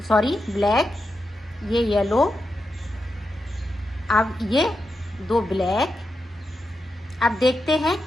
सॉरी ब्लैक, ये येलो, अब ये 2 ब्लैक। अब देखते हैं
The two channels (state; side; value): normal; both; correlation 0.87